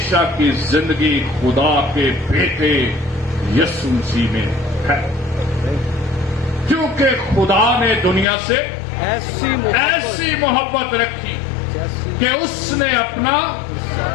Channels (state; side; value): drops out; right; at 8.2 s